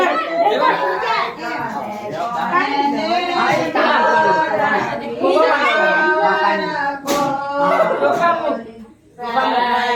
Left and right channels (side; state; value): both; identical; correlation 1.00